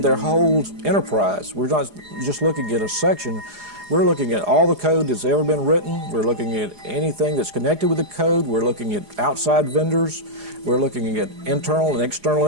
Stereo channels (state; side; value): late; left; 4.8 ms